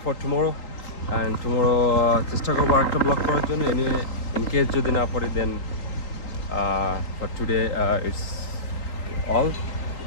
for tomorrow. And tomorrow চেষ্টা করবো একটা ব্লগ করার জন্য। এনিওয়ে, ইন কেস যদি না পারি, then for today it's all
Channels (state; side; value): late; right; 3.8 ms